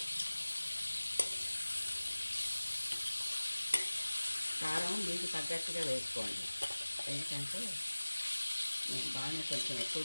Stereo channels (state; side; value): inverted; both; correlation -1.00